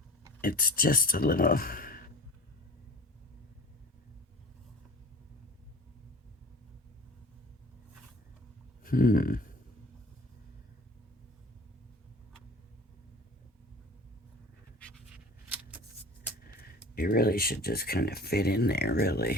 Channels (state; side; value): normal; both; correlation 0.43